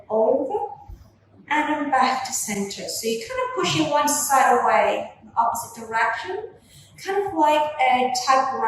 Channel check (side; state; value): both; identical; correlation 1.00